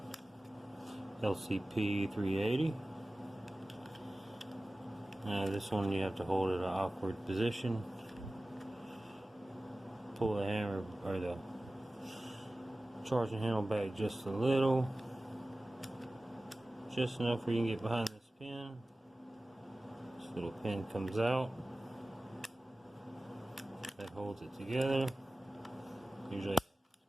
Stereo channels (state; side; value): normal; both; correlation 0.97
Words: LCP 380. This one you have to hold at an awkward position. Pull the hammer or the charging handle back just a little, just enough where you can get behind this pin. This little pin comes out that holds it together. Usually